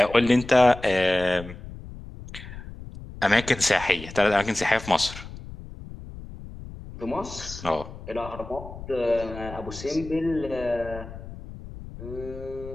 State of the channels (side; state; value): left; noise; rumble, 13 dB below the sound